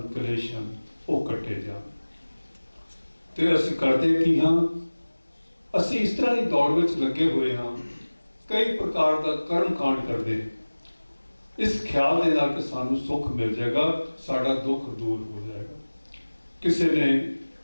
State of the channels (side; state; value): both; inverted; correlation -1.00